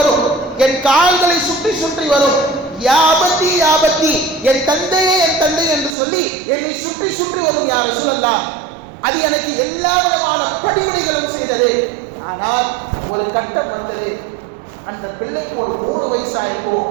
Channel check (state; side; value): drops out; left; at 6.0 s